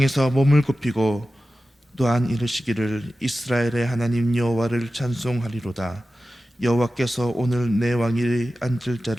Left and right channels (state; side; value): normal; both; correlation 0.94